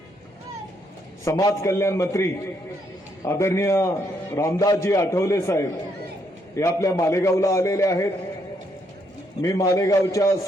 समाज कल्याण मंत्री आदरणीय रामदासजी आठवले साहेब हे आपल्या मालेगावला आलेले आहेत. मी मालेगावच्या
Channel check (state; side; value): normal; both; correlation 0.74